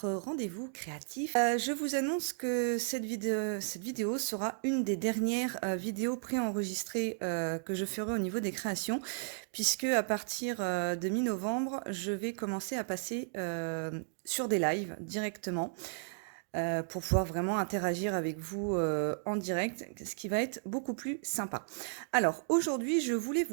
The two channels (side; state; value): left; silent; digital silence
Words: rendez-vous créatif. Je vous annonce que cette vidéo sera une des dernières vidéos préenregistrées que je ferai au niveau des créations, puisque à partir de mi-novembre, je vais commencer à passer sur des lives directement pour pouvoir vraiment interagir avec vous en direct, ce qui va être beaucoup plus sympa. Alors aujourd'hui, je voulais